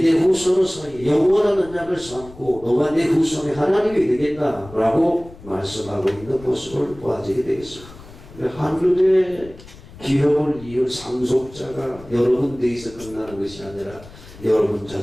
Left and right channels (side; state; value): left; noise; rumble, 19 dB below the sound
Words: 후손의 사이 영원한 언약을 삼고 너와 내 후손이 하나님이 되겠다라고 말씀하고 있는 모습을 보아지게 되겠습니다. 하늘의 기업을 이을 상속자가 여러분 대에서 끝나는 것이 아니라 여러분